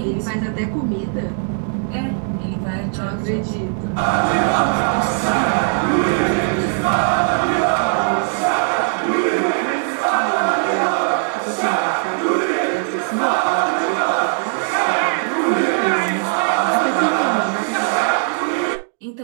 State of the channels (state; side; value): silent; left; 62 dB below the other